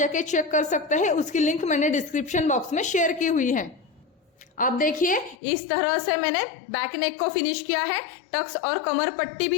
चेक कर सकते हैं। उसकी लिंक मैंने डिस्क्रिप्शन बॉक्स में शेयर की हुई है। अब देखिए इस तरह से मैंने बैक नेक को फिनिश किया है, टक्स और कमर पट्टी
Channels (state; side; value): drops out; right; at 5.4 s